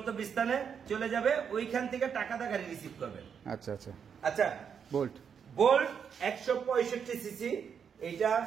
চলে যাবে, ওইখান থেকে টাকাটা গাড়ি রিসিভ করবেন। আচ্ছা, আচ্ছা। আচ্ছা, বোল্ট বোল্ট 165 সিসি। এটা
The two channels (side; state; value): left; quieter; 7.2 dB